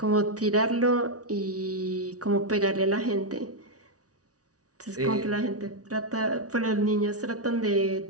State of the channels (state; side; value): late; left; 0.67 ms